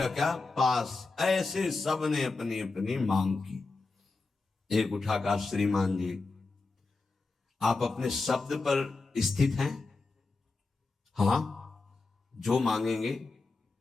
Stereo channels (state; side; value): quieter; right; 3.8 dB